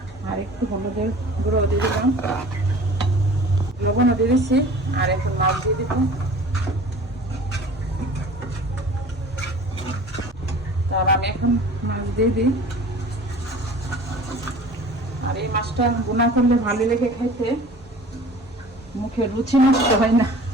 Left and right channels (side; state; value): both; normal; correlation 0.44